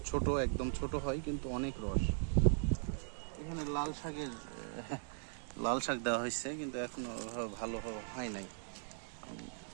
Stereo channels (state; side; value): silent; left; digital silence